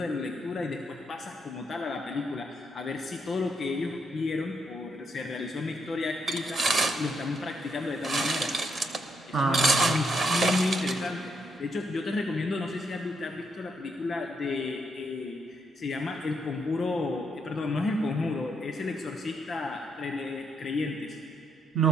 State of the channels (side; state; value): both; normal; correlation 0.77